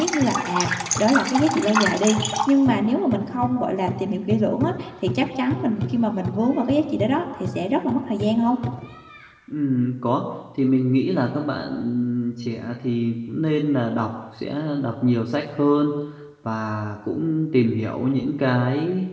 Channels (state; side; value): identical; both; correlation 1.00